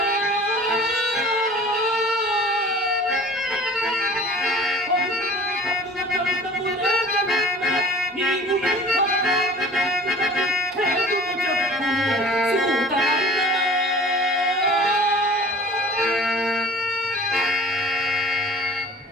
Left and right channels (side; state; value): both; normal; correlation 0.45